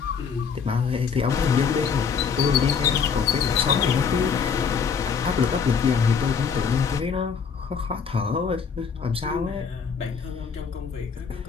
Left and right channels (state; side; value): quieter; right; 6.2 dB